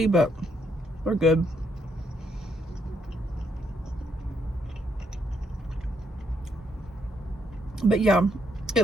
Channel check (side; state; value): both; normal; correlation 0.75